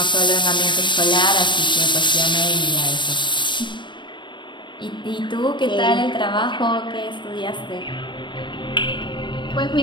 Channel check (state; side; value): late; right; 0.22 ms